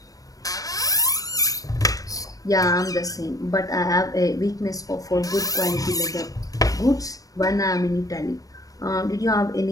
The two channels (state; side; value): late; right; 0.17 ms